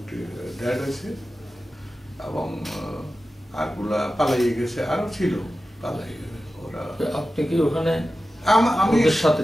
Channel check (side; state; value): both; normal; correlation 0.94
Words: ডেড হয়েছে, এবং আরগুলা পালাইয়ে গেছে, আরো ছিল পালাই গেছে ওরা। আপনি কি ওখানে?